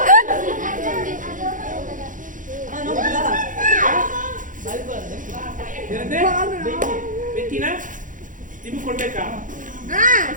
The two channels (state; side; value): late; left; 0.38 ms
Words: ಬೆಕ್ಕಿನ ನಿಮ್ಗೆ ಕೊಡ್ಬೇಕಾ?